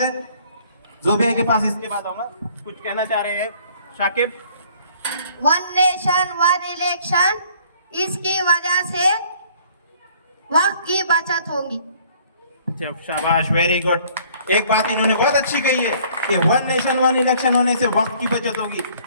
जोबिया के पास इसके बाद आऊंगा। कुछ कहना चाह रहे हैं Shakib? One nation one election, इसकी वजह से वक्त की बचत होगी। शाबाश, वेरी गुड। एक बात इन्होंने बहुत अच्छी कही है कि वन नेशन वन इलेक्शन होने से वक्त की बचत होगी।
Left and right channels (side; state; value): both; inverted; correlation -0.58